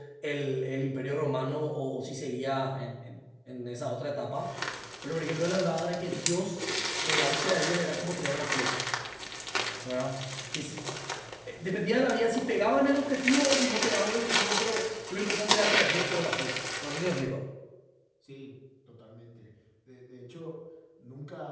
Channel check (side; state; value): both; identical; correlation 1.00